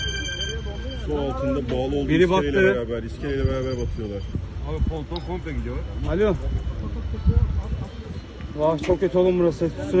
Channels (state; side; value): identical; both; correlation 1.00